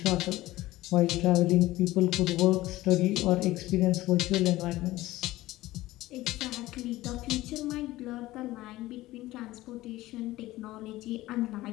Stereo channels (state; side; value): quieter; right; 17.2 dB